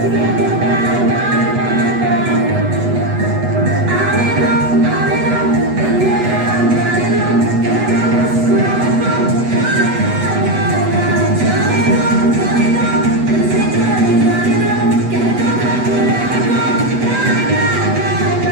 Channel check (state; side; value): late; left; 8.1 ms